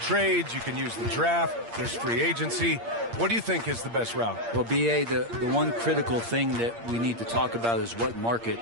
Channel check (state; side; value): late; left; 8.6 ms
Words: you can use the draft, there's free agency. What do you think is the best route? Well, B.A., the one critical thing that we need to talk about is what market